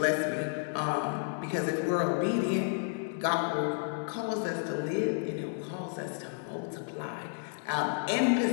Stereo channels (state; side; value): silent; right; digital silence